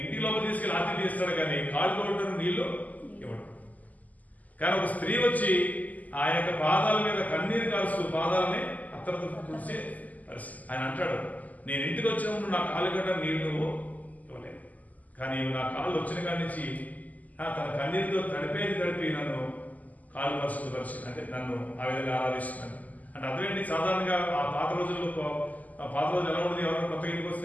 ఇంటి లోపల తీసుకెళ్ళి ఆతిథ్యం ఇస్తాడు, కానీ కాళ్ళు కొట్టడం నీళ్లు ఇవ్వడు. కానీ ఒక స్త్రీ వచ్చి ఆ యొక్క పాదాల మీద కన్నీరు కాల్స్తూ పాదాలని అత్తరతో కూర్చే పరిస్థితి. ఆయన అంటాడు, నేను ఇంటికి వచ్చినప్పుడు నా కాళ్ళు గడ్డ నీళ్లు ఇవ్వలేదు, కానీ నా కాళ్ళు వచ్చిన కాడి నుంచి తన కన్నీరుతో తడిపి నన్ను కాళ్ళు పరిశుద్ధపరిచి, అంటే నన్ను ఆ విధంగా ఆరాధిస్తున్నాను అంటే అర్థం ఏంటి? సాధారణంగా ఆ పాత రోజుల్లో, పాత రోజులు ఎలా ఉండేది? ఎవరైనా కొత్తగా ఇంటికి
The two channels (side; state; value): right; late; 0.078 ms